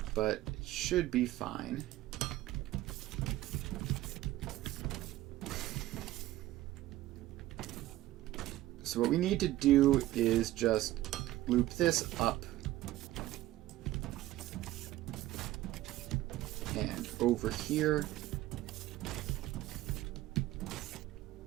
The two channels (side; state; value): left; quieter; 15.5 dB